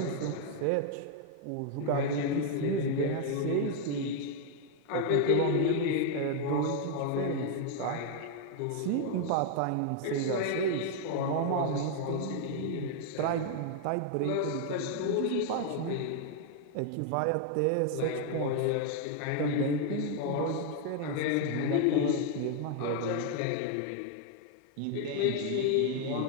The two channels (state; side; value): different; both; correlation 0.00